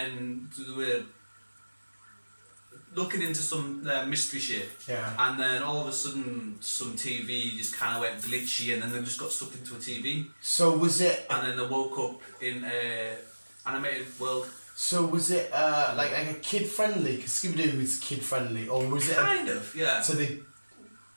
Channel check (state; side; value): inverted; both; correlation -1.00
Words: they were looking into some mystery shit. Yeah. And then all of a sudden, some TV just kind of went glitchy, and then they just got stuck into a TV. So was it? And then they woke up in a animated world. So was it like a kid friendly? Because Scooby-Doo is kid friendly, or was it? Kind of, yeah. So they.